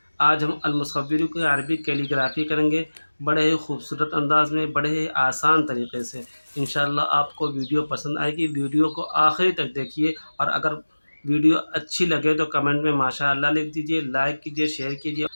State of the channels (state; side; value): inverted; both; correlation -1.00